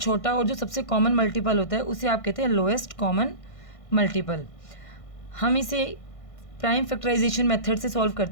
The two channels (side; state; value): right; late; 1.6 ms